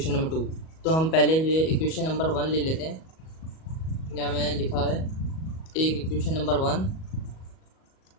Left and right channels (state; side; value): late; right; 37 ms